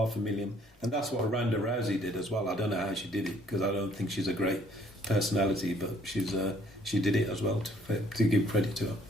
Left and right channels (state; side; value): normal; both; correlation 0.61